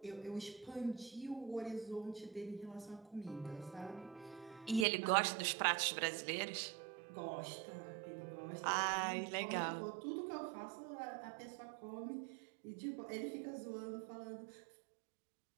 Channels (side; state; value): left; drops out; at 4.9 s